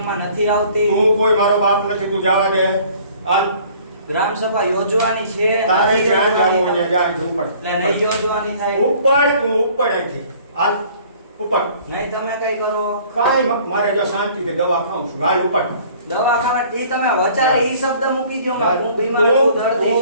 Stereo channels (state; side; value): inverted; both; correlation -0.53